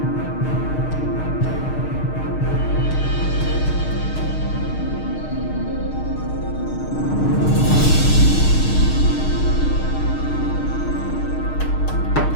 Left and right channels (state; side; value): late; right; 6.5 ms